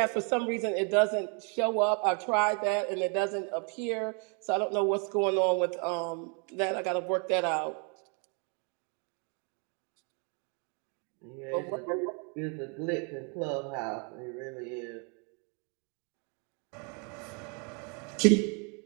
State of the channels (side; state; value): left; quieter; 37.8 dB